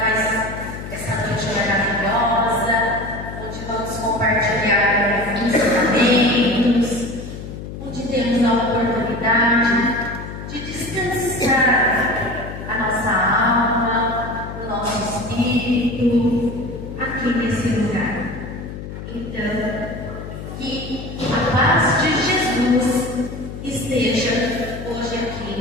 essa noite maravilhosa, onde vamos compartilhar ensinamentos, onde temos a oportunidade de descansar a nossa alma, o nosso espírito, aqui nesse lugar. Então, que a paz de Jesus esteja hoje aqui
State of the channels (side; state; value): left; noise; hum, 10 dB below the sound